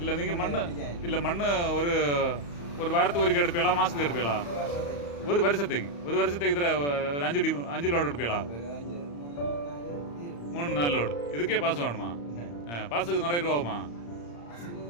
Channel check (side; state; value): right; late; 35 ms